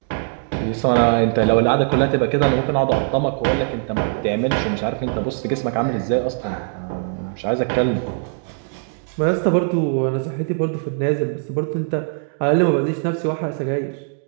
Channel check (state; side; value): silent; left; digital silence